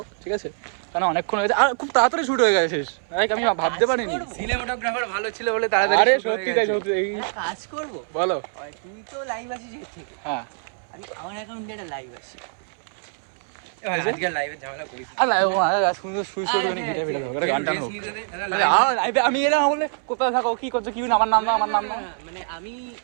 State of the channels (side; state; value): left; silent; 63 dB below the other